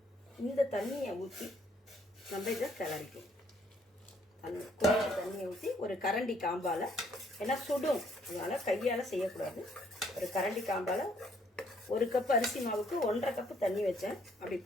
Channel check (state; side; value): normal; both; correlation 0.66